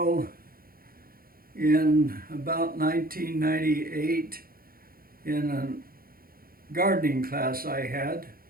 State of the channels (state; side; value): late; left; 0.43 ms